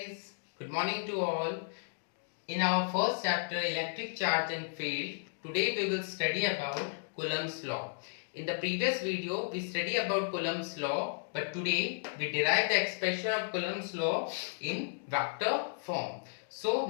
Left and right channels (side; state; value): right; silent; digital silence